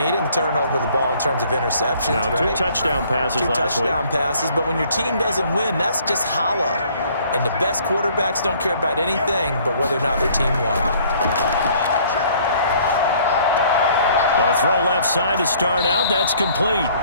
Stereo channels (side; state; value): both; inverted; correlation -0.58